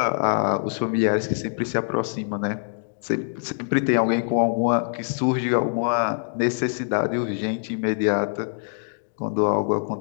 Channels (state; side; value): silent; right; digital silence